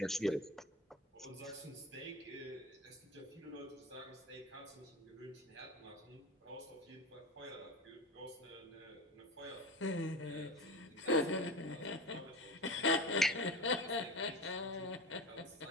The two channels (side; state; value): both; normal; correlation 0.29